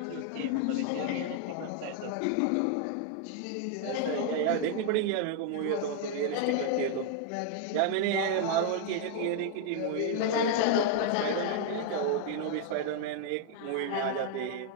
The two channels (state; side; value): different; both; correlation 0.00